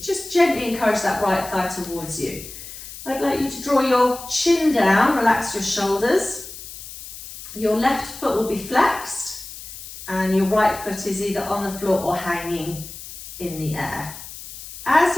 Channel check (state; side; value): noise; left; hiss, 13 dB below the sound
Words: just gently encourage that right thigh towards you. I'd like you to draw your chin down, relax your shoulders. Your left foot will be flexed and your right foot is either on the floor or hanging in the air. As